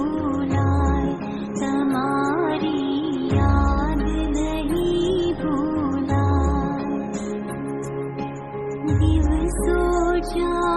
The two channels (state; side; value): identical; both; correlation 1.00